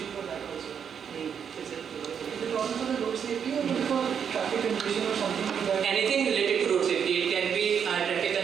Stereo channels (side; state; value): left; quieter; 7.6 dB